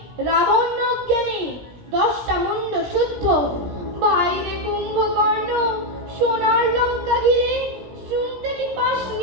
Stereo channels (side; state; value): left; late; 17 ms